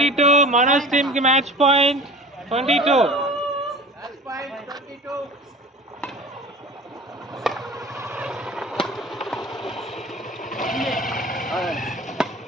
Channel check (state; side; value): normal; both; correlation 0.39